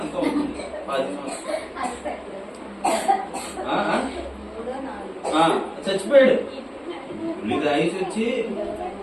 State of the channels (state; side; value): identical; both; correlation 1.00